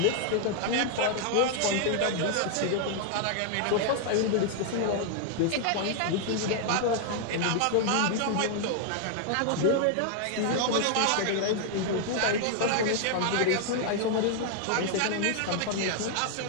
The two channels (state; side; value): different; both; correlation 0.00